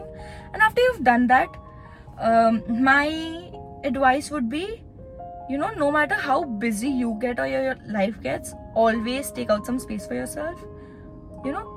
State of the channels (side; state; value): both; identical; correlation 1.00